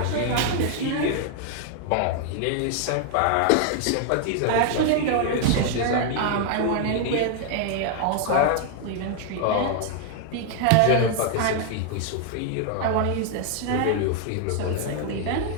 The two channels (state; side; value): different; both; correlation 0.00